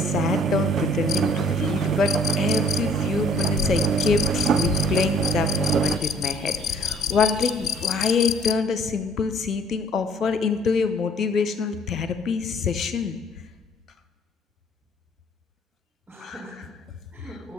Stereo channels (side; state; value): both; normal; correlation 0.58